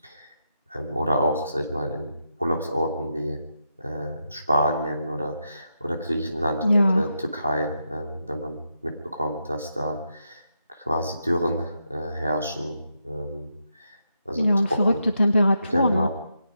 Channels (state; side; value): inverted; both; correlation -0.83